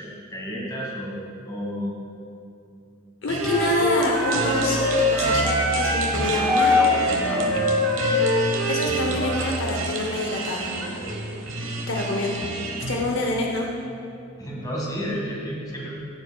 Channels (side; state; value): both; normal; correlation 0.21